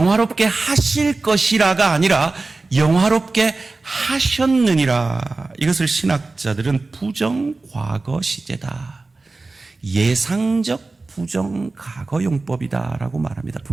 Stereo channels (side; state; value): left; quieter; 3.5 dB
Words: 하실 것이라가 아니라 영화롭게 하셨느니라. 이것을 신학자들은 부정과거 시제다, 예상적 부정과거 용법이다라고 말합니다.